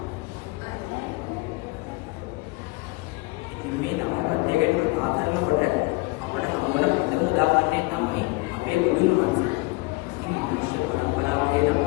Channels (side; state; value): right; quieter; 24.2 dB